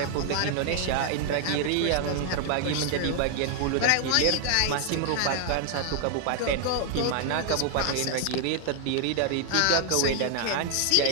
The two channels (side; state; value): both; different; correlation 0.00